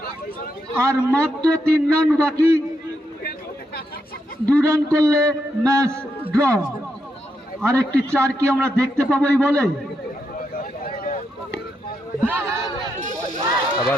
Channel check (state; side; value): normal; both; correlation 0.82